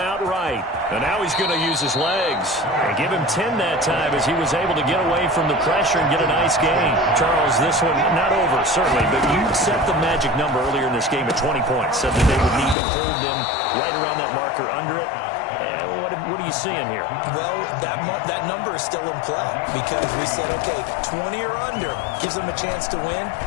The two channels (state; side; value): drops out; right; at 12.8 s